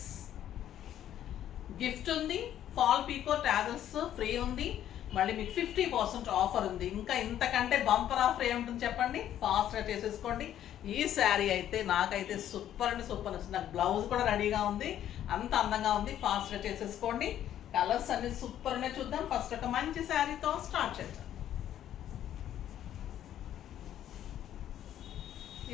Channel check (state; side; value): quieter; right; 11.2 dB